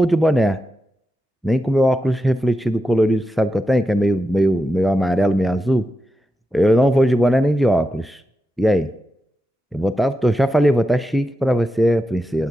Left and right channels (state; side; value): normal; both; correlation 0.89